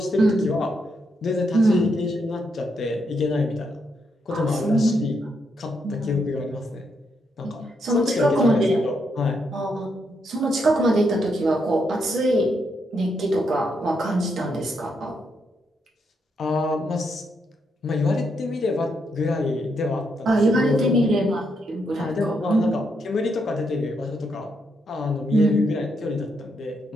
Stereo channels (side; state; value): both; normal; correlation 0.79